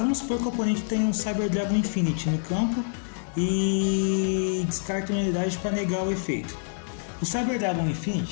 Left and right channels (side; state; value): right; silent; digital silence